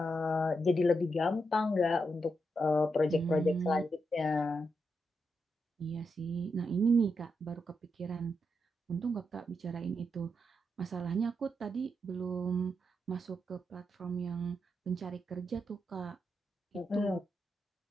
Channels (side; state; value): both; normal; correlation 0.83